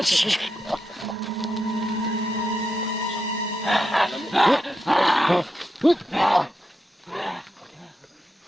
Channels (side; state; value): both; normal; correlation 0.85